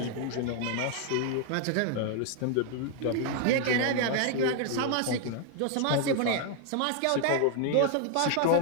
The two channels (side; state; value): both; different; correlation 0.00